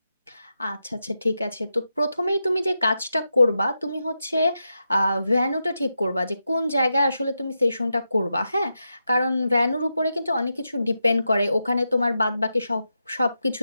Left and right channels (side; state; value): both; inverted; correlation -0.88